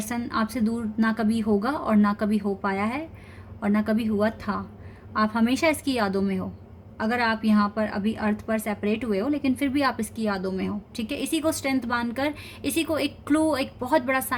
आपसे दूर ना कभी होगा और ना कभी हो पाया है और ना कभी हुआ था। आप हमेशा इसकी यादों में हो। अगर आप यहाँ पर अभी अर्थ पर सेपरेट हुए हो, लेकिन फिर भी आप इसकी यादों में हो, ठीक है। इसी को स्ट्रेंथ मानकर, इसी को एक क्लू, एक बहुत बड़ा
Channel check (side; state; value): both; identical; correlation 1.00